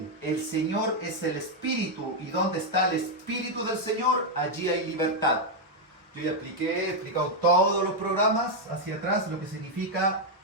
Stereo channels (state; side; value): normal; both; correlation 0.01